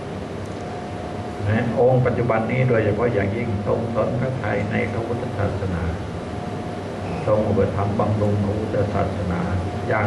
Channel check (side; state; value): both; identical; correlation 1.00